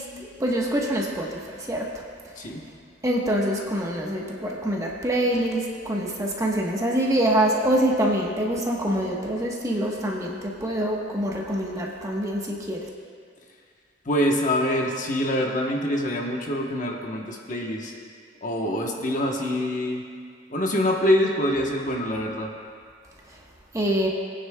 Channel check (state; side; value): normal; both; correlation 0.53